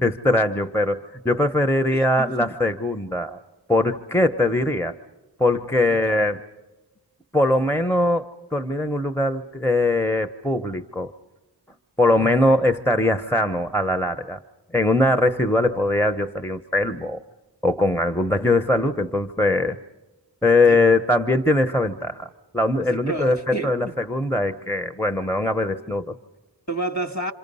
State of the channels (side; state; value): both; normal; correlation 0.69